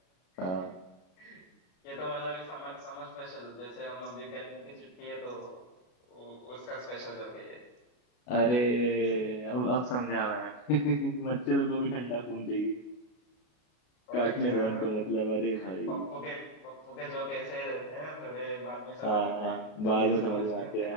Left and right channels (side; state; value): right; late; 33 ms